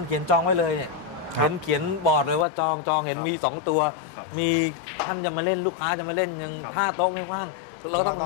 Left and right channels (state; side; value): drops out; right; at 2.5 s